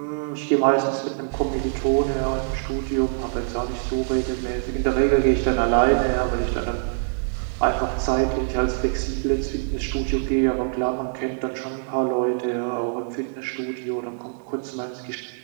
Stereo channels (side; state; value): left; silent; digital silence